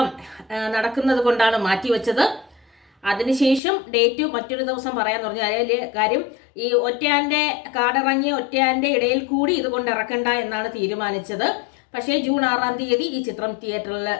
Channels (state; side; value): drops out; right; at 3.6 s